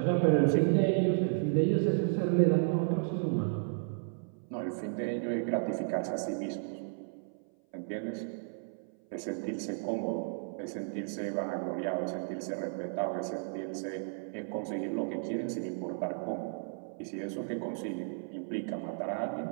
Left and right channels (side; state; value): left; silent; 55 dB below the other